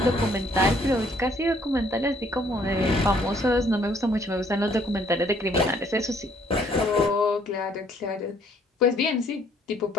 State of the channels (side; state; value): both; normal; correlation 0.63